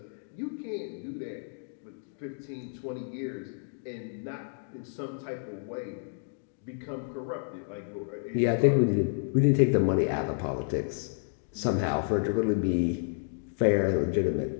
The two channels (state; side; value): silent; right; digital silence